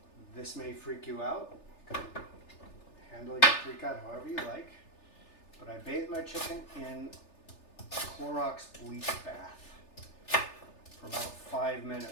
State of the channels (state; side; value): late; right; 3.3 ms